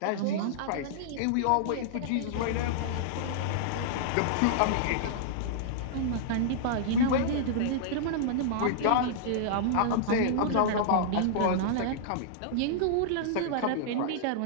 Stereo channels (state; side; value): different; both; correlation -0.02